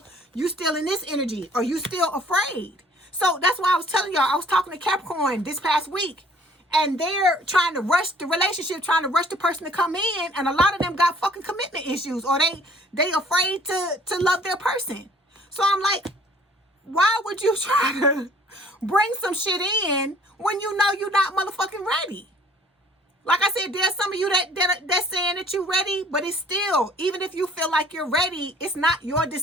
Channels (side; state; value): both; normal; correlation 0.55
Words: in this energy, or you still afraid. So that's why I was telling y'all, I was talking to Capricorn this past week, and they're trying to rush the relationship, trying to rush the person to come in, and a lot of them got fucking commitment issues, or they afraid to love their person. So I'm like, why would you try to bring some shit in when you know you're not motherfucking ready? Like I said, there's some of you that's saying that you're ready, but it's still, even if you feel like you're ready, it's not your